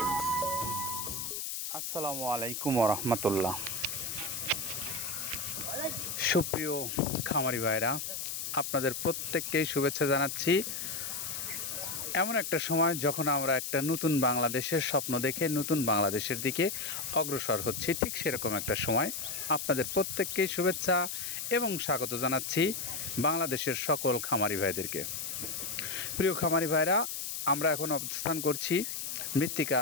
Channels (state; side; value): noise; left; hiss, 4 dB below the sound